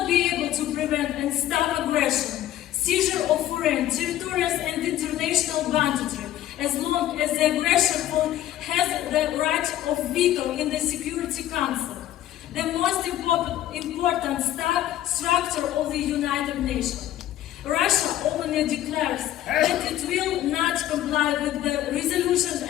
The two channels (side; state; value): right; quieter; 12.9 dB